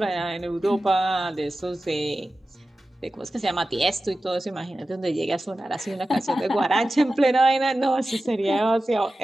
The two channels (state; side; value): normal; both; correlation 0.94